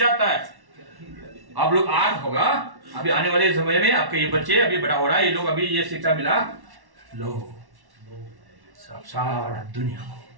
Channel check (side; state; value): left; late; 1.1 ms